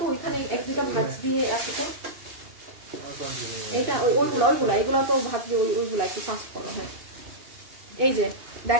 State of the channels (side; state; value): left; late; 2.8 ms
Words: ওইখানে 1-2টা ম্যাচ দিয়ে আছে তো। এইটা ওইগুলা এগুলো তো ভাবছি ওইগুলা একটু ফাস্ট করো। হ্যাঁ এই যে